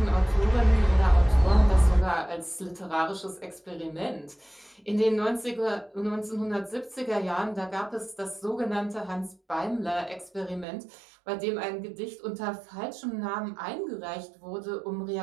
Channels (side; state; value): left; drops out; at 10.7 s